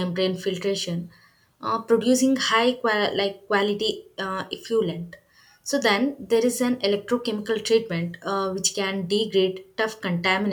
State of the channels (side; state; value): both; identical; correlation 1.00